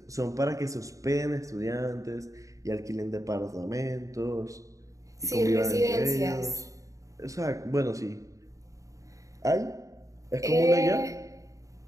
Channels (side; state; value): left; late; 0.16 ms